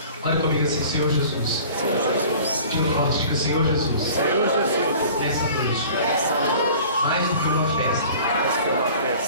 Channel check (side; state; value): both; inverted; correlation -0.45